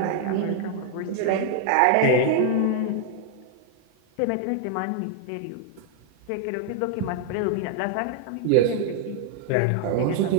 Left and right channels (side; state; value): both; different; correlation 0.00